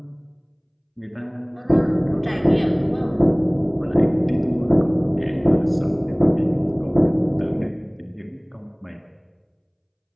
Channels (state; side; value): identical; both; correlation 1.00